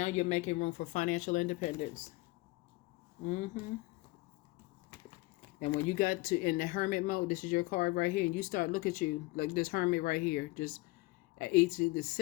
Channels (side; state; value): right; quieter; 22.2 dB